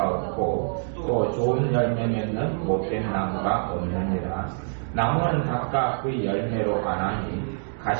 없고 또 좋은 열매 맺는 못된 나무가 없느니라. 나무는 각각 그 열매로 가나니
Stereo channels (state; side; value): silent; left; digital silence